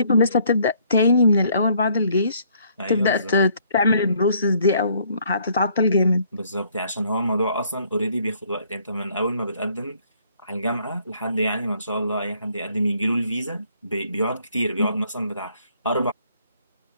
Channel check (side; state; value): both; inverted; correlation -0.65